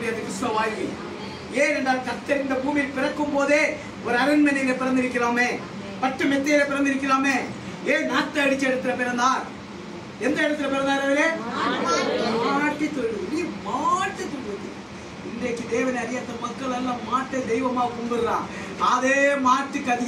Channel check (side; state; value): both; identical; correlation 1.00